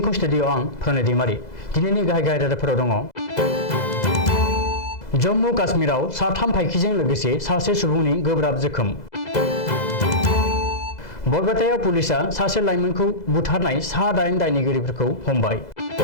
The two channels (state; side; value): late; right; 2.0 ms